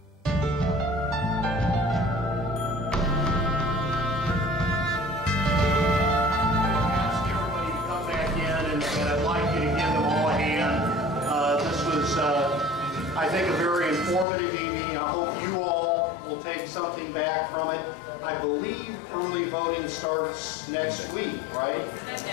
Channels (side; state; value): right; drops out; at 14.2 s